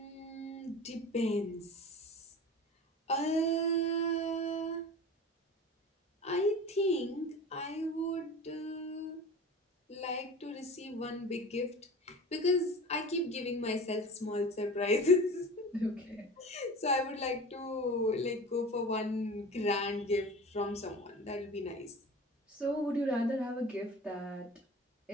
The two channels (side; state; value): both; normal; correlation 0.36